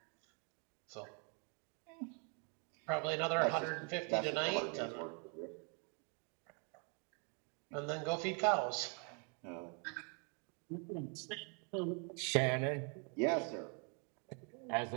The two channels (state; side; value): quieter; left; 37.2 dB